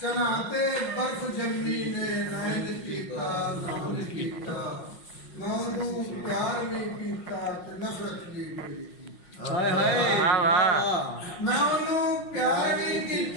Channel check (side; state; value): right; late; 5.5 ms